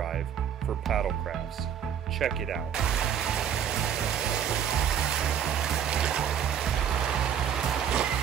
for paddle crafts. Check it out.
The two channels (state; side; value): quieter; left; 8.7 dB